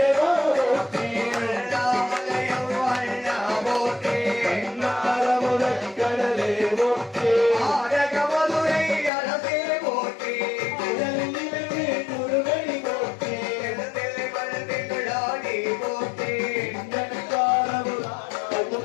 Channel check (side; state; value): right; drops out; at 9.1 s